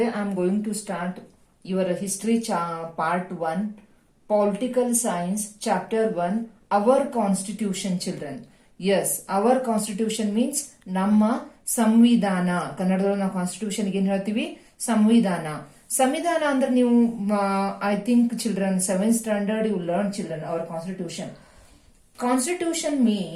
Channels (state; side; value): identical; both; correlation 1.00